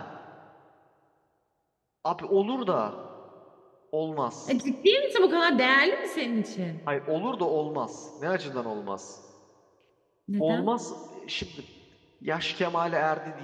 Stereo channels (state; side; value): identical; both; correlation 1.00